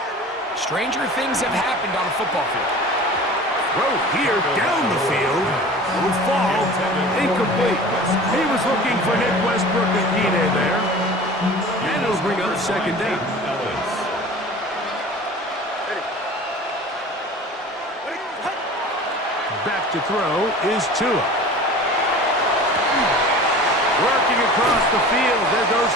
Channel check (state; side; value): normal; both; correlation 0.40